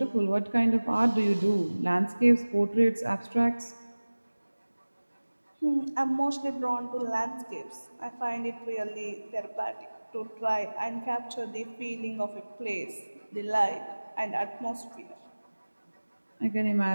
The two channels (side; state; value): both; inverted; correlation -1.00